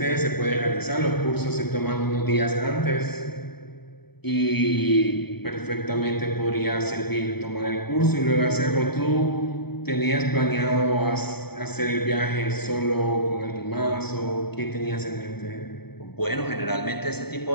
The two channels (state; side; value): late; right; 0.97 ms